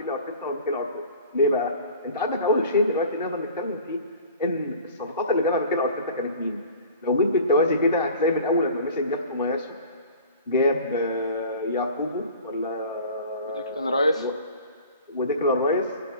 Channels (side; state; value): both; inverted; correlation -0.43